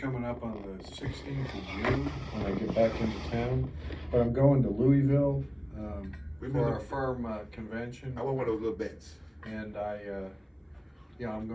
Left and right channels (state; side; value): identical; both; correlation 1.00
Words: up on the 16th of June when I get back into town. But I'm going to Louisville for our firm convention. I want one of those little bets. And I'm